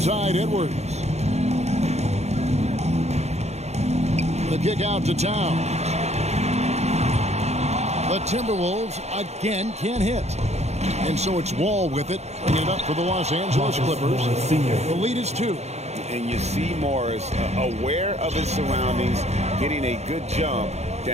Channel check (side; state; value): left; late; 0.32 ms